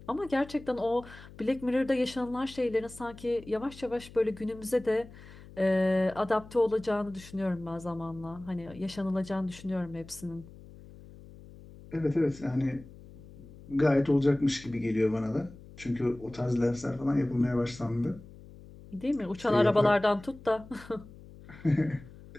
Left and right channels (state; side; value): noise; left; hum, 19 dB below the sound